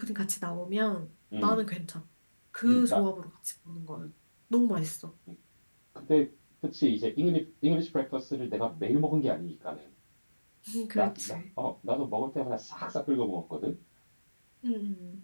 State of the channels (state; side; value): inverted; both; correlation -1.00